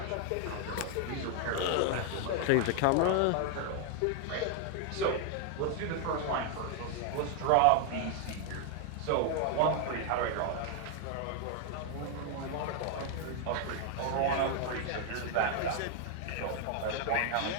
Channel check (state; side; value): different; both; correlation 0.00